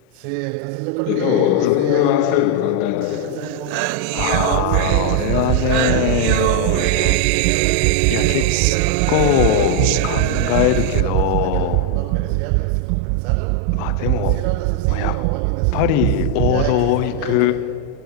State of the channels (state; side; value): different; both; correlation 0.00